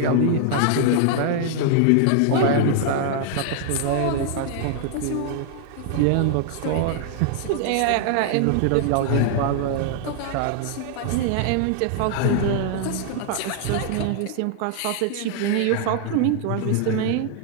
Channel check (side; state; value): both; different; correlation 0.00